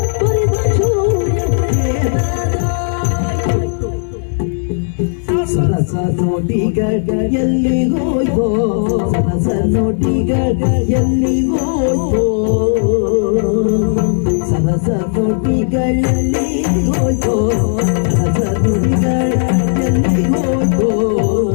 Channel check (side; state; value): right; silent; digital silence